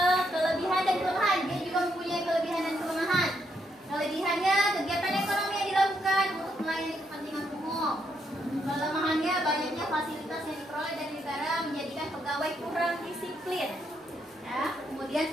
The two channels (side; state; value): both; normal; correlation 0.77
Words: kelebihan dan kelemahan. Dia juga mempunyai kelebihan dan kelemahan. Kelebihannya, kegiatan ekonomi yang dilakukan untuk melayani kepentingan umum. Kelemahannya, banyaknya fasilitas yang diperoleh dari negara menjadikan pegawai kurang disiplin. Ya. Kemudian